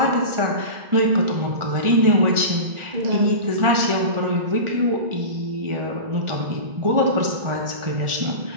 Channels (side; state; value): left; late; 1.4 ms